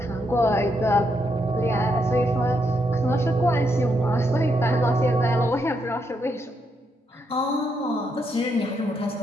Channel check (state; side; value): normal; both; correlation 0.78